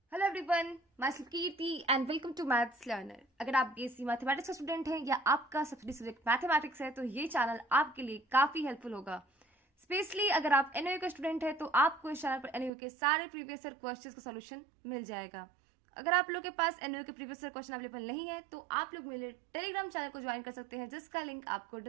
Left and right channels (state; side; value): drops out; left; at 12.7 s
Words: एवरीवन, मैं Kirti and welcome to maths learner. अगर आप बीएससी मैथमेटिक्स का स्टूडेंट हैं या आपका सब्सिडी सब्जेक्ट मैथमेटिक्स है तो ये चैनल आपके लिए काफी हेल्पफुल होगा। स्पेशली अगर आप एनओयू का स्टूडेंट है तो आपको इस चैनल पर एनओयू के सारे प्रीवियस ईयर क्वेश्चंस का सॉल्यूशन मिल जाएगा। अगर आप लोग के पास एनओयू के प्रीवियस ईयर क्वेश्चन अवेलेबल नहीं है तो आप लोग मेरे टेलीग्राम चैनल को ज्वाइन कर सकते हैं, जिसका लिंक आपको